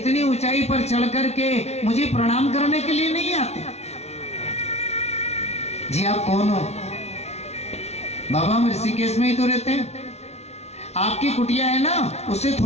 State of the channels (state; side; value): late; right; 0.31 ms